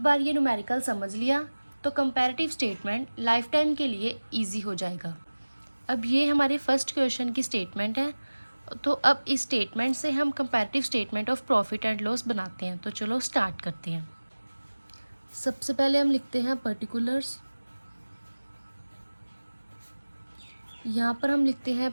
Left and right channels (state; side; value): inverted; both; correlation -1.00